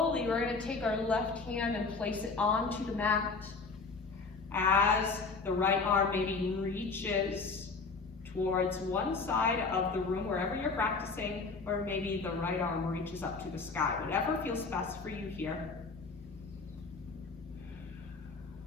we're going to take our left hand and place it onto the mat as the right arm maybe reaches towards one side of the room, wherever you're practicing, or maybe the right arm reaches up to the sky. Whatever feels best for you here.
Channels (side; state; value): right; quieter; 4.3 dB